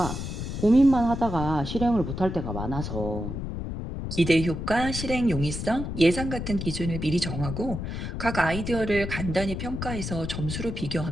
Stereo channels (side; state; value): left; noise; rumble, 5 dB below the sound